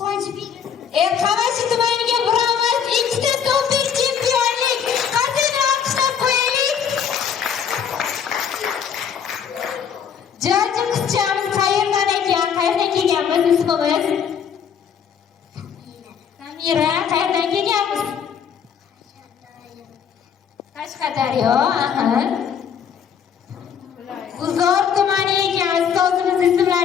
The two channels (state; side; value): quieter; right; 7.7 dB